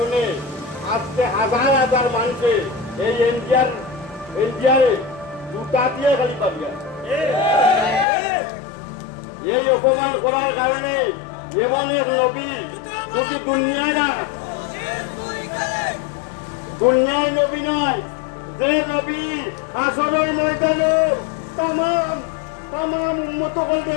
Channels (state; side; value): drops out; right; at 8.1 s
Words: আজকে হাজার হাজার মানুষে এই এনজিআরে জুতা দিয়ে খালি পাবিয়া এই অপমান করার কারণে এমন এক নবী শুধু দুনিয়ায় নবী নয়, যে নবী আসরের ময়দানে তাম উন্মত